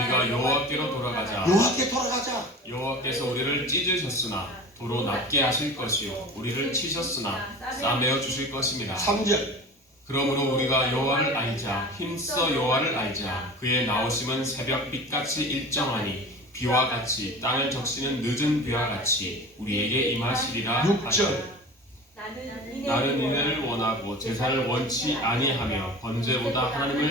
여호와께로 돌아가자. 여호와께 돌아가자. 여호와께서 우리를 찢으셨으나 도로 낫게 하실 것이요 우리를 치셨으나 싸매어 주실 것입니다. 3절. 그러므로 우리가 여호와를 알자 힘써 여호와를 알자. 그의 나오심은 새벽빛같이 일정하니 비와 같이 땅을 적시는 늦은 비와 같이 우리에게 임하시리라. 6절. 나는 인을 원하고 제사를 원치 아니하며 번제보다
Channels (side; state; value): both; normal; correlation 0.36